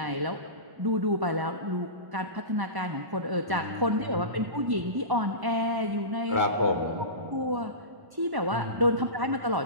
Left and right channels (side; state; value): left; late; 1.1 ms